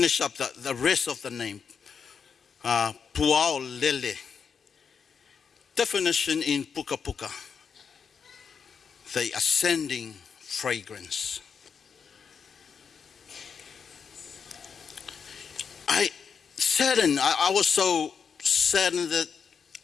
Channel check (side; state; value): right; quieter; 6.4 dB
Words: up the rest of the name, Puao Lele. Definition in Puka Puka, the ascending fragrance. I was so saddened that